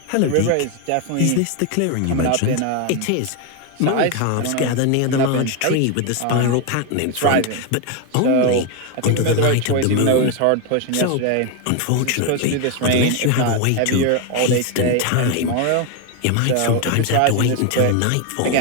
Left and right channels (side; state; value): both; different; correlation 0.01